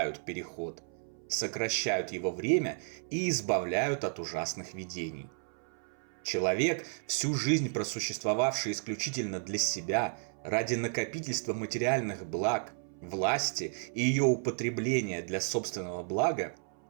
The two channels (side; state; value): left; silent; 56 dB below the other